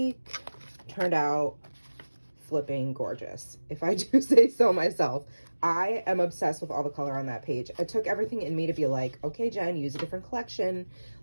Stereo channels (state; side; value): inverted; both; correlation -1.00